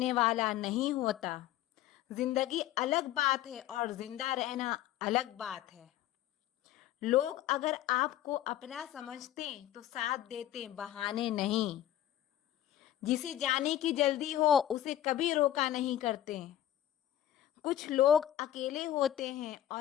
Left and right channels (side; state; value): right; quieter; 12.6 dB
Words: वाला नहीं होता। जिंदगी अलग बात है और जिंदा रहना अलग बात है। लोग अगर आपको अपना समझते तो साथ देते, बहाने नहीं। जिसे जाने की जल्दी हो उसे कभी रोका नहीं करते। कुछ लोग अकेले होते हैं